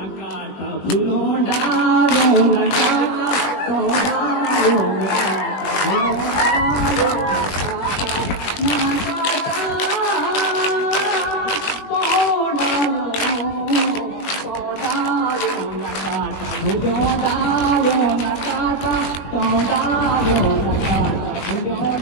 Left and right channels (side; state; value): right; late; 20 ms